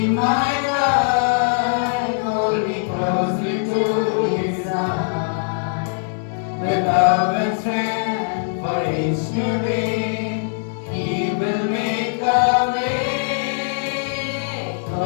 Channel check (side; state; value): right; silent; digital silence